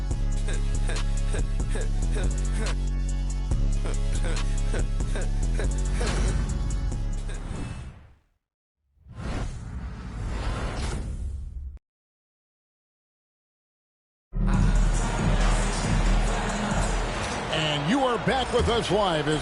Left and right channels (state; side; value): identical; both; correlation 1.00